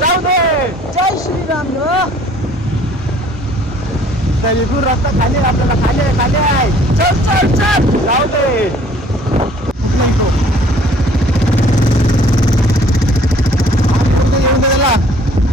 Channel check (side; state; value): both; normal; correlation 0.56